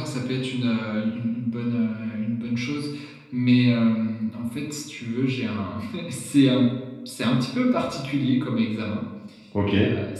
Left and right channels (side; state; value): both; identical; correlation 1.00